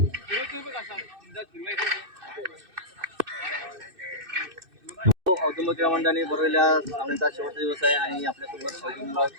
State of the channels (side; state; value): left; late; 2.6 ms